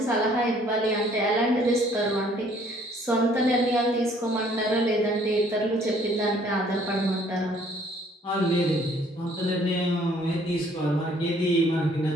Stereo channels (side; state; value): both; normal; correlation 0.60